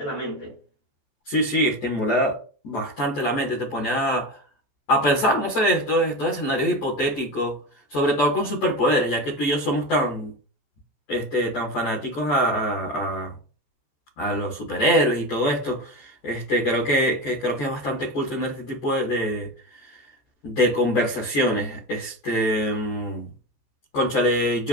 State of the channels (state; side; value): late; right; 14 ms